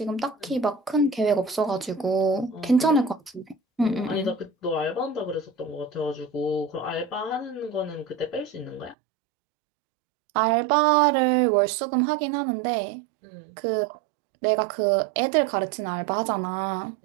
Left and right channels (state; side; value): drops out; left; at 9.0 s